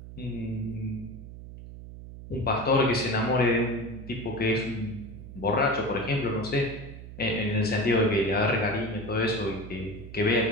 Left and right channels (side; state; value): right; noise; hum, 13 dB below the sound